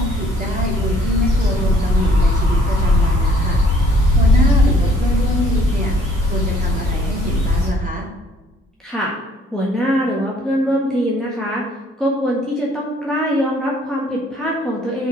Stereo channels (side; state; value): both; normal; correlation 0.61